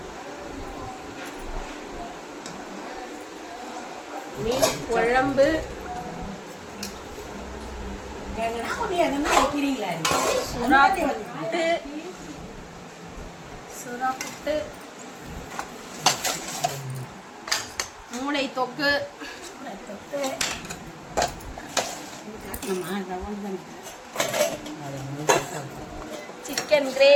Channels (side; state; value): both; identical; correlation 1.00